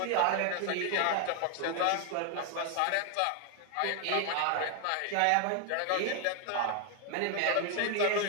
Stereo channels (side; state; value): both; different; correlation 0.00